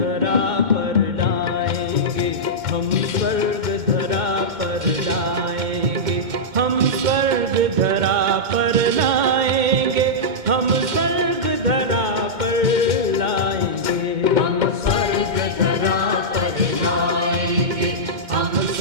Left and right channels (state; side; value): late; left; 2.2 ms